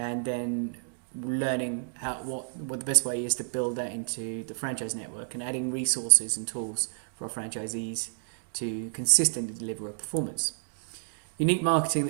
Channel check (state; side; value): silent; left; digital silence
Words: then learning what the best way is to build that into the franchise network and adding resources and tools for our franchisees to consistently deliver a performance. Unique marketing